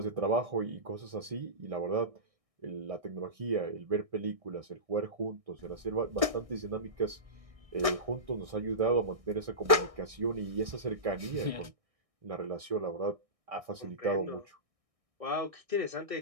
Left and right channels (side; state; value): left; late; 1.6 ms